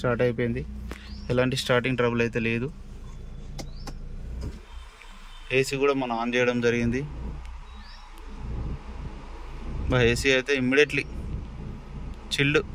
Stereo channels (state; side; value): identical; both; correlation 1.00